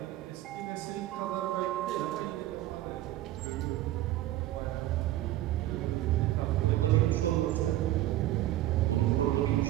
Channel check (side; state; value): left; quieter; 14.7 dB